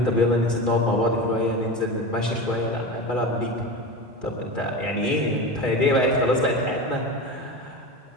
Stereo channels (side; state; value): both; normal; correlation 0.26